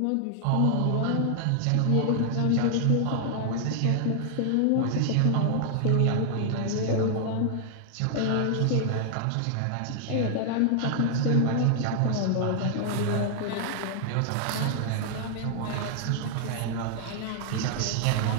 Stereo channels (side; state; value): both; different; correlation 0.00